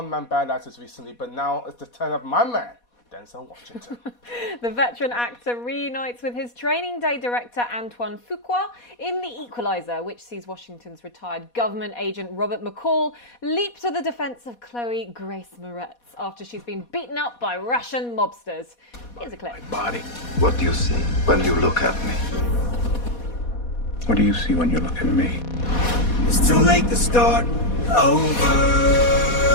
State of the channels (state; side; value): late; right; 4.2 ms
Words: band actors recently, but now it's the turn of my man, Denzel Washington. The veteran actor reunites with his training day director Antoine Fuqua in The Equalizer, which sees Washington's retired government agent Robert McCall leap to the defense of Chloë Grace Moretz after she's been beaten up by Russian mobsters. Here's a clip. My body. What do you see when you look at me? What do you see when you look at me? It's too late to start over.